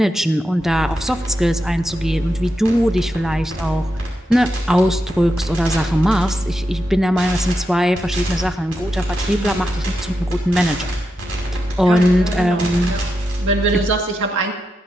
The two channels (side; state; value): both; normal; correlation 0.86